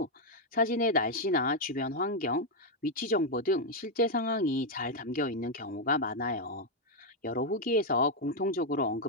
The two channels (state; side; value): normal; both; correlation 0.00